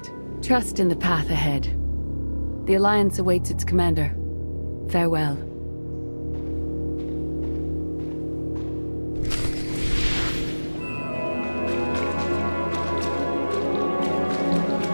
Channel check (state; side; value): inverted; both; correlation -1.00